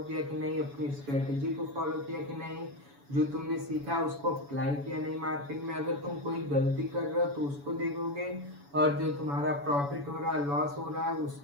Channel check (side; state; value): left; late; 7.0 ms